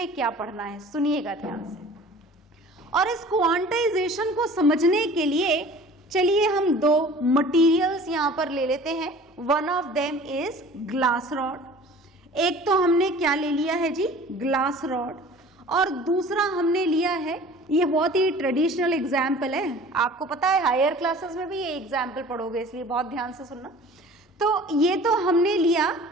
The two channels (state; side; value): normal; both; correlation 0.45